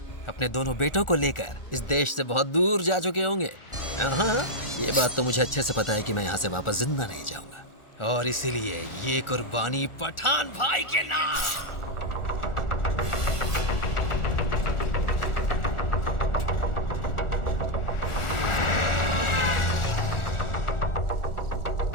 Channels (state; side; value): late; right; 1.4 ms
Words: अपने दोनों बेटों को लेकर इस देश से बहुत दूर जा चुके होंगे। हाँ, ये बात तो मुझे अच्छे से पता है कि मैं यहाँ से वापस जिंदा नहीं जाऊंगा, और इसीलिए ये कुर्बानी पठान भाई के नाम।